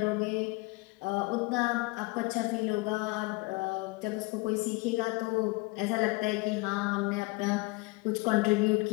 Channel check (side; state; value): right; quieter; 25.3 dB